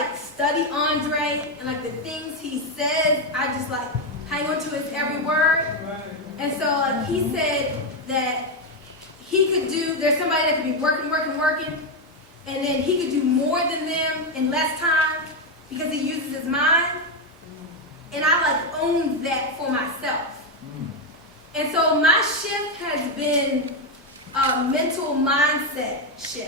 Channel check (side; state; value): both; normal; correlation 0.06